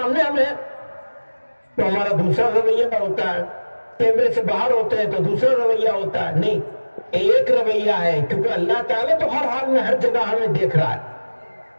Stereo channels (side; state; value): both; inverted; correlation -1.00